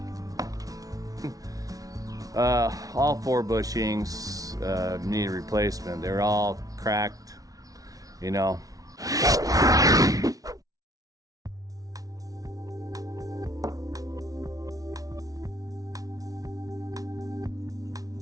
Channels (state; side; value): late; left; 0.18 ms